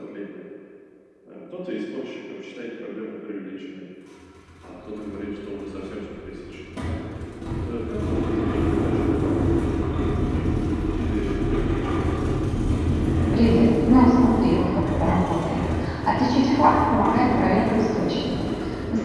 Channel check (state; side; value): identical; both; correlation 1.00